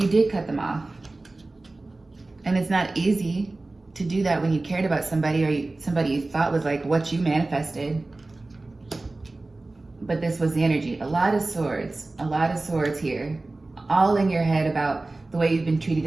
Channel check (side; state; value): left; quieter; 3.1 dB